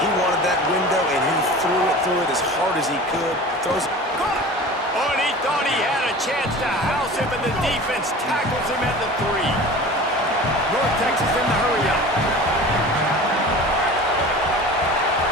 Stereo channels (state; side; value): normal; both; correlation 0.38